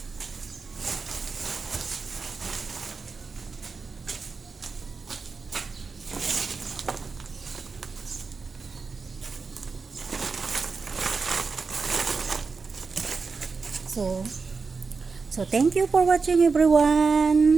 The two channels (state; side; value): quieter; left; 4.7 dB